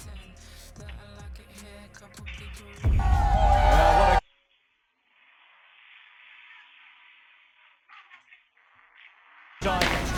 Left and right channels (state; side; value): identical; both; correlation 1.00